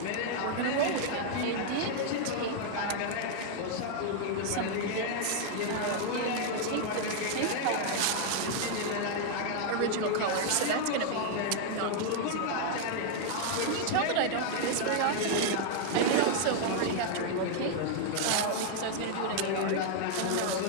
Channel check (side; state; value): both; different; correlation 0.00